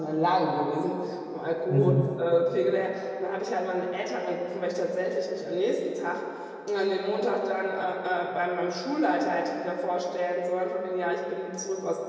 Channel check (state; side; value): identical; both; correlation 1.00